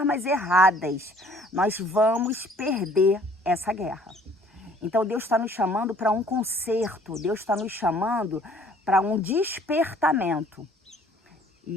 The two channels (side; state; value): both; normal; correlation 0.57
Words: erradas, nós vamos perder essa guerra. Então Deus está nos chamando para um conserto, Deus está nos chamando para um despertamento.